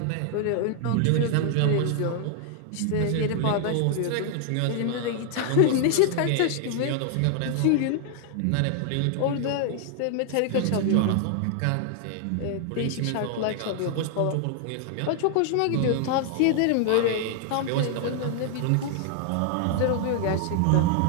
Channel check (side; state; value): both; different; correlation 0.00